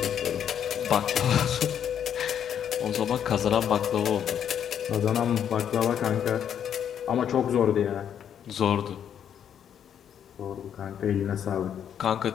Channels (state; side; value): quieter; right; 9.0 dB